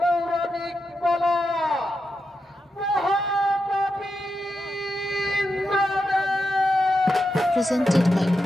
পালা। Presented by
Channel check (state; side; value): normal; both; correlation 0.87